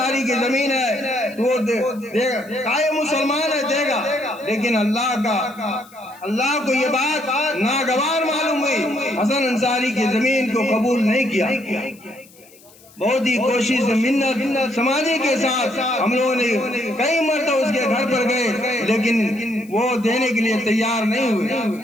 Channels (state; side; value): noise; left; hiss, 26 dB below the sound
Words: کی زمین ہے، تو وہ مسلمان ہے دے گا، لیکن اللہ کو یہ بات ناگوار معلوم ہوئی، حسن انصاری کی زمین کو قبول نہیں کیا۔ بہت ہی کوشش منت سماجی کے ساتھ ہم لوگوں نے کئی مرتبہ اس کے گھر پر گئے، لیکن وہ دینے کے لیے تیار نہیں ہوئے۔